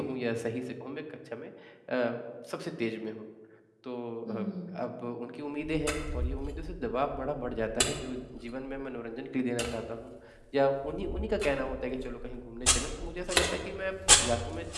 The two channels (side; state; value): both; identical; correlation 1.00